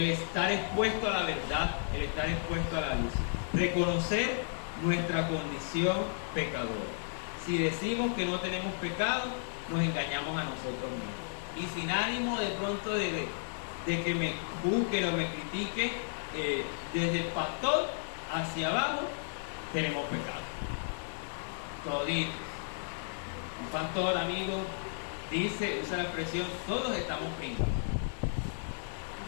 estar expuesto a la verdad, el estar expuesto a la luz. Reconocer nuestra condición pecadora. Si decimos que no tenemos pecado, nos engañamos a nosotros mismos. Y sin ánimo de pronto de que me juzguen o me critiquen, desde el pastor hacia abajo, tenemos pecado. Toditos. Un pastor, amigo, usa la expresión, todos estamos pringados.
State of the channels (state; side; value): silent; right; digital silence